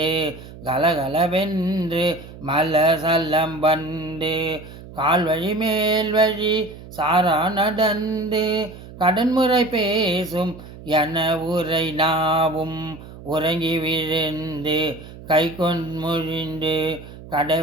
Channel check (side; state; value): right; noise; hum, 16 dB below the sound